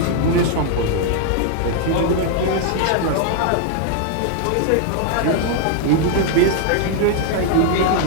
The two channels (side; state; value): both; different; correlation 0.00